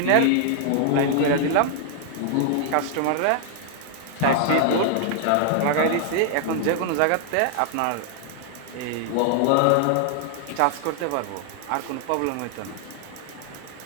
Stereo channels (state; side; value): different; both; correlation 0.00